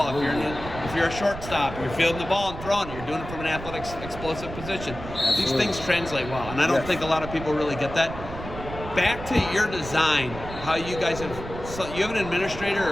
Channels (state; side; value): noise; right; rumble, 10 dB below the sound